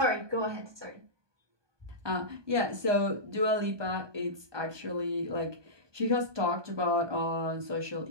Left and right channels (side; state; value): left; late; 1.2 ms